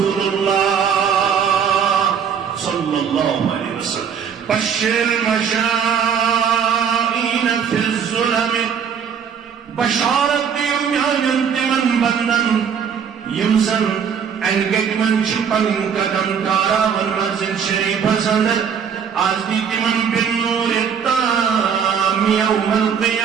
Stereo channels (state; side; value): quieter; left; 7.3 dB